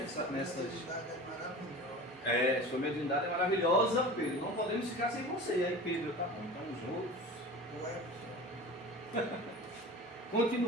Sua mediunidade é maravilhosa, Pedro, não podemos ficar sem você. Aí Pedro, tá bom, então os outros...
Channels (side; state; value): both; normal; correlation 0.35